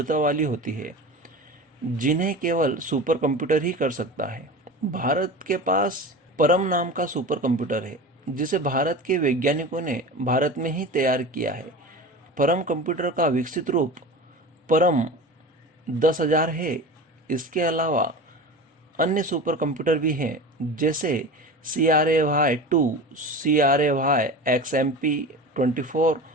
वाली होती है, जिन्हें केवल सुपर कंप्यूटर ही कर सकता है। भारत के पास परम नाम का सुपर कंप्यूटर है, जिसे भारत के वैज्ञानिकों ने भारत में ही तैयार किया है। परम कंप्यूटर का विकसित रूप परम 10,000 है। इसके अलावा अन्य सुपर कंप्यूटर भी हैं, जैसे CRAY2, CRAY XMP24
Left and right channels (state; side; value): normal; both; correlation 0.32